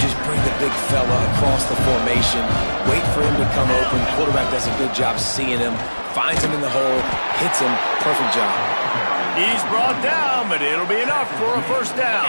bring the big fella across the formation, wait for him to come open. Quarterback does a good job seeing him, finds him in the hole, hits him. Perfect job. He's brought down, but it'll be enough for a first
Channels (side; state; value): both; inverted; correlation -1.00